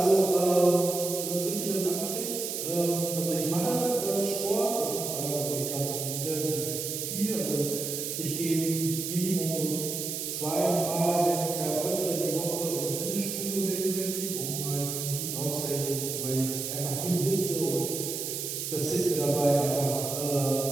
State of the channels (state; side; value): noise; right; hiss, 4 dB below the sound